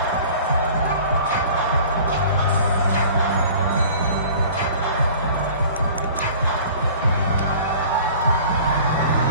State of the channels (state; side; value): inverted; both; correlation -0.46